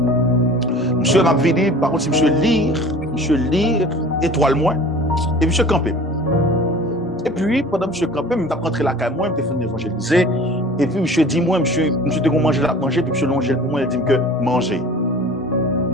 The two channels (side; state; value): both; normal; correlation 0.43